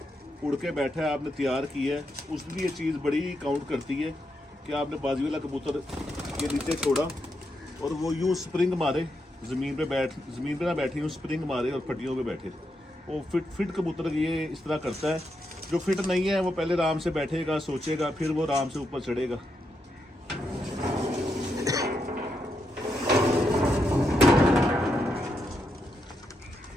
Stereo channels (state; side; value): normal; both; correlation 0.82